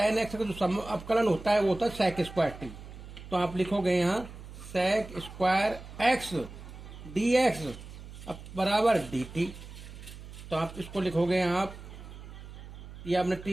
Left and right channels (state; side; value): noise; right; hum, 14 dB below the sound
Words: x का जो अवकलन होता है वो होता है sec स्क्वायर t। तो आप लिखोगे यहाँ sec square x D x अब बराबर डी टी। तो आप इसको लिखोगे यहाँ, आप ये आपने